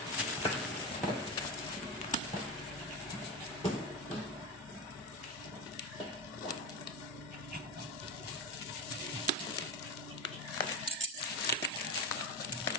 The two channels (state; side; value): normal; both; correlation 0.17